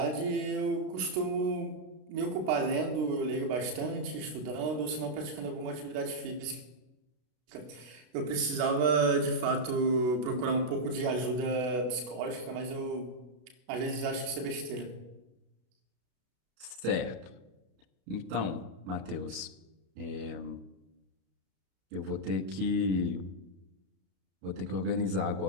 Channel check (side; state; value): left; late; 32 ms